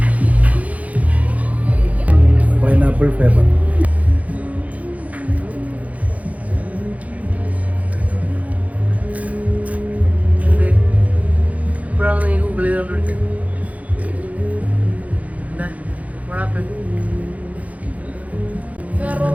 Pineapple flavour. ഇപ്പോഴാണ് നീ ഗൂഗിൾ ചെയ്തോണ്ടിരിക്കുന്നത്.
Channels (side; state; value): left; late; 0.070 ms